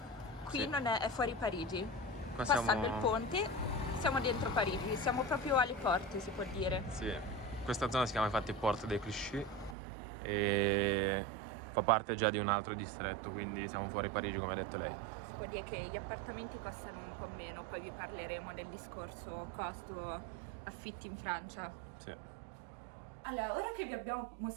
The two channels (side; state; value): left; drops out; at 9.8 s